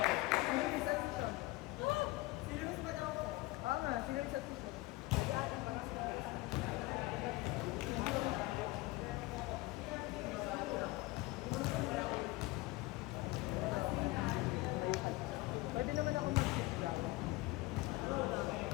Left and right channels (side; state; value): right; quieter; 20.3 dB